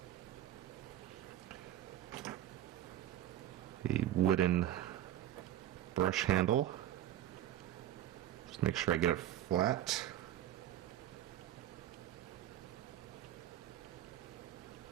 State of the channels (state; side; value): quieter; left; 12.0 dB